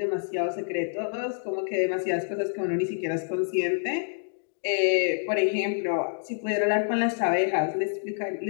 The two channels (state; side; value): silent; right; digital silence